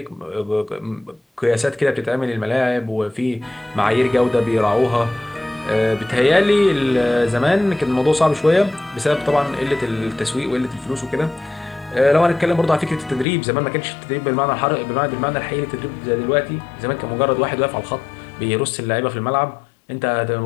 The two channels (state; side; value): drops out; right; at 13.2 s